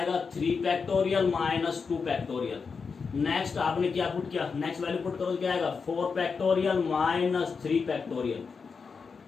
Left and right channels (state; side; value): quieter; right; 5.3 dB